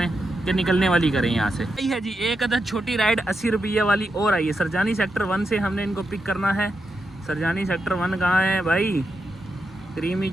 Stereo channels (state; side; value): normal; both; correlation 0.86